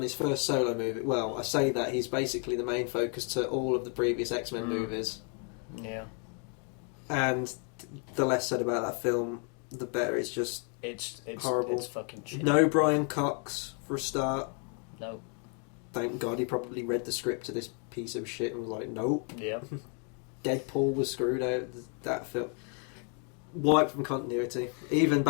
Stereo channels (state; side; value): quieter; right; 39.8 dB